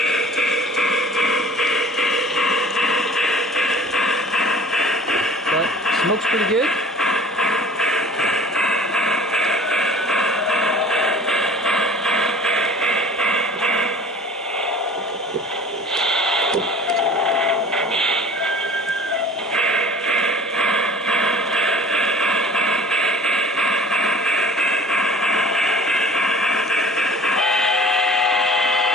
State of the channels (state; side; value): normal; both; correlation 0.46